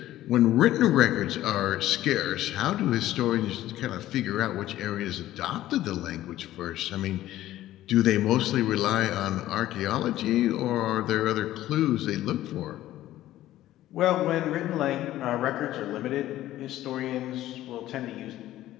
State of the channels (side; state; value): right; quieter; 14.3 dB